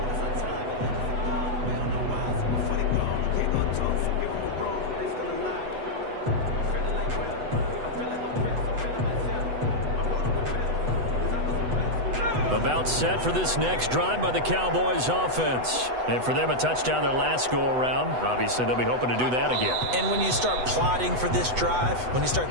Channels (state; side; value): late; left; 8.0 ms